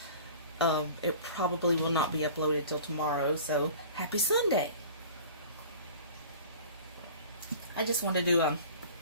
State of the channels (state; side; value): inverted; both; correlation -0.42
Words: it probably will not be uploaded till tomorrow, so happy Sunday. I just wanted to do